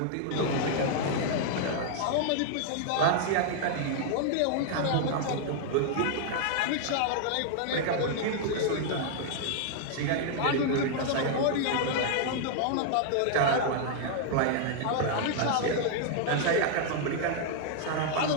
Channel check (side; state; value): both; different; correlation 0.00